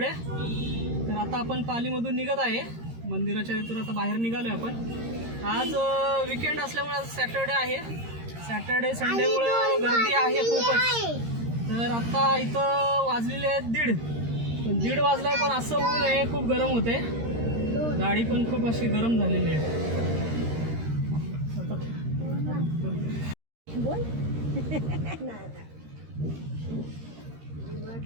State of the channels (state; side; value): late; left; 13 ms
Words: तर आता आपण पालीमधून निघत आहे. मंदिराच्या इथून आता बाहेर निघालो आहे आपण. आज विकेंड असल्यामुळे सॅटर्डे आहे. सॅटर्डे संडेमुळं गर्दी आहे खूपच. तर आता इथं वाजलेले आहेत 1:30. पण 1:30 वाजलाय पण असं ऊन आहे. खूप गरम होते. गाडी पण खूप अशी गरम झालेली आहे.